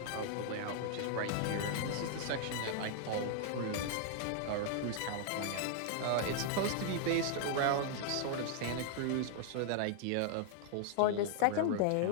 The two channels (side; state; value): both; different; correlation -0.01